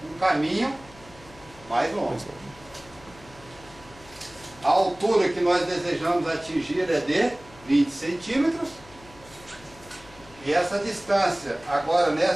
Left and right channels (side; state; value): left; noise; hum, 22 dB below the sound